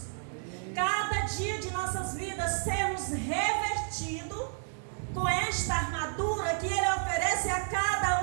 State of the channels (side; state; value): left; silent; 57 dB below the other